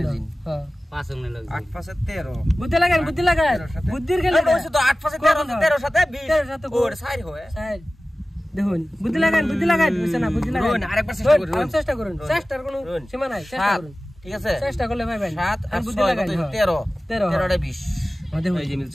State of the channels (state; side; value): normal; both; correlation 0.96